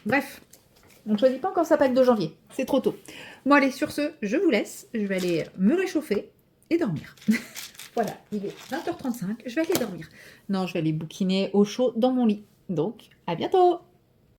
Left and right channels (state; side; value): identical; both; correlation 1.00